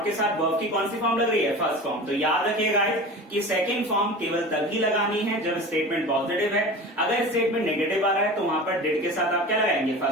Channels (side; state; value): both; normal; correlation 0.34